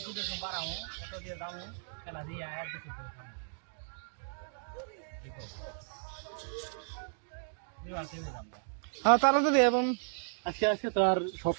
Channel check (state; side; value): silent; left; digital silence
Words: হ্যাঁ তারা যদি এবং আজকে আজকে তো আর সব